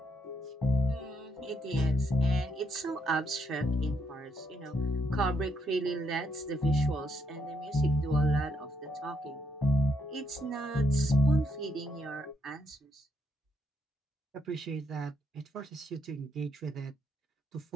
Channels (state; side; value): normal; both; correlation 0.76